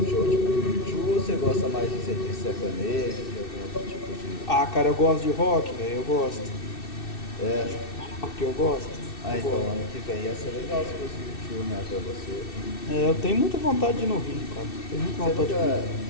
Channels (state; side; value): late; right; 2.6 ms